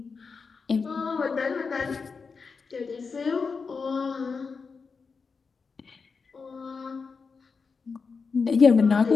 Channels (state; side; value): quieter; right; 5.0 dB